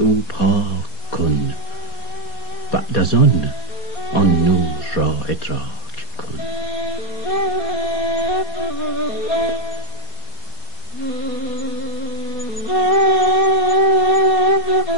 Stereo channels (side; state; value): right; late; 4.2 ms